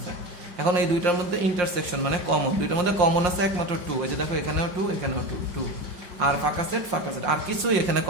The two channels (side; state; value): left; late; 5.6 ms